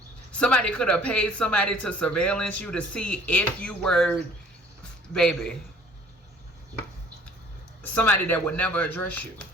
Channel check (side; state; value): both; normal; correlation 0.55